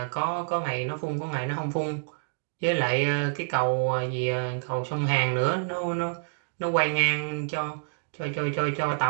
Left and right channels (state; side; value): silent; left; digital silence